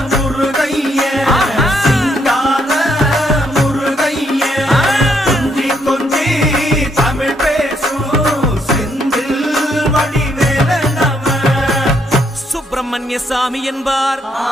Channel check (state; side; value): normal; both; correlation 0.73